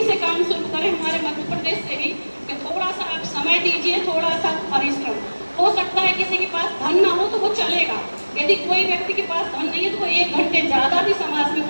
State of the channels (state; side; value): inverted; both; correlation -1.00